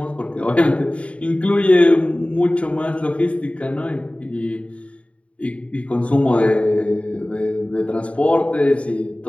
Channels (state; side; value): late; right; 0.063 ms